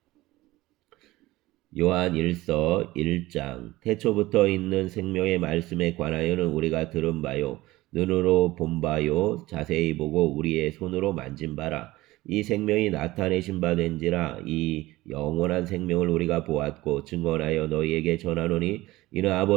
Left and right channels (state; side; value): quieter; left; 18.5 dB